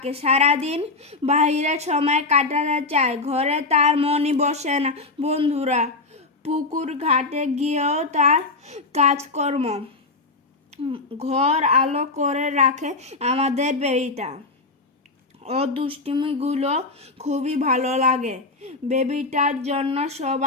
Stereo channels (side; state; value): right; quieter; 3.5 dB